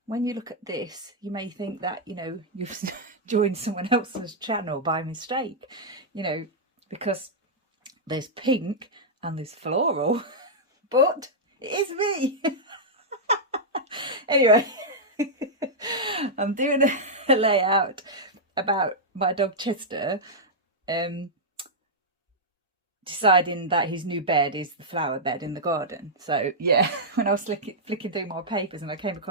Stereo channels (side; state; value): both; normal; correlation -0.07